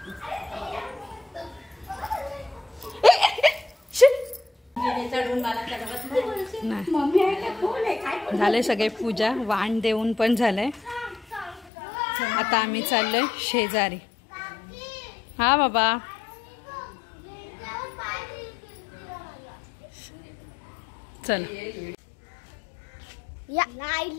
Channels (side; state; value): right; drops out; at 11.7 s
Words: झाले सगळे पूजा वाण देऊन पण झालंय आता आम्ही चाललोय शेजारी हा बाबा चल या